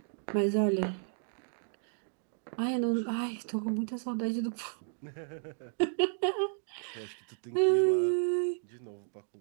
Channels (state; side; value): silent; left; 56 dB below the other